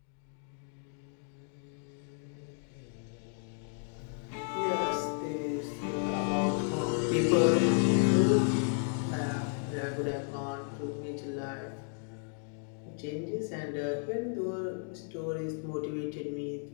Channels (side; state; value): right; silent; 56 dB below the other